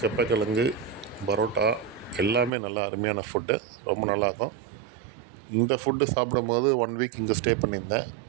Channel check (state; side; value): drops out; left; at 2.5 s